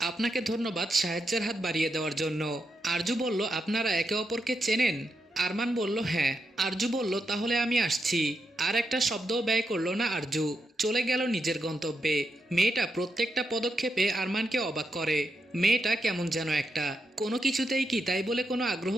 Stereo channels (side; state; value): both; normal; correlation 0.84